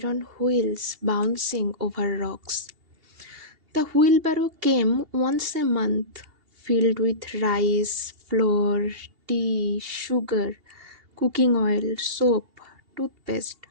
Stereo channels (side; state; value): left; late; 2.8 ms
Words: wheels bouncing over rocks. The wheelbarrow came once a month, filled with rice, flour, tea, sugar, cooking oil, soap, toothpaste.